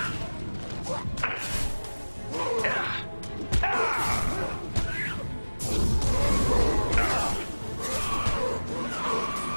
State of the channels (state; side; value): inverted; both; correlation -1.00